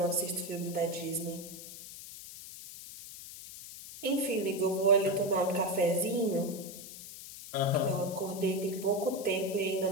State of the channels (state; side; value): noise; left; hiss, 13 dB below the sound